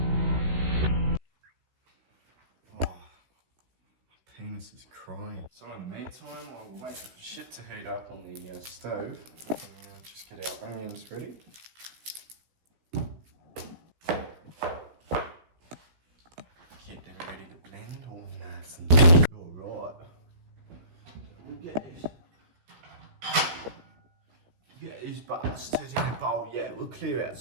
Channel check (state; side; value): late; left; 16 ms